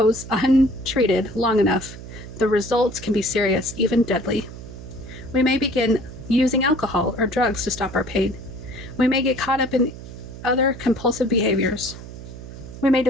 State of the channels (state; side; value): noise; right; hum, 13 dB below the sound